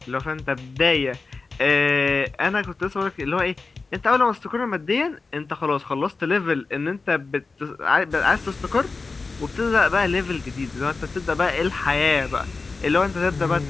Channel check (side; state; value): right; quieter; 4.0 dB